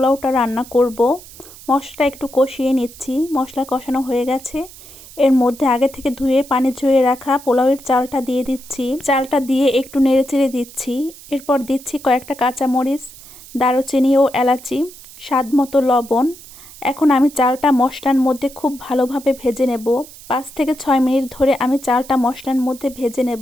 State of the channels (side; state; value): right; noise; hiss, 19 dB below the sound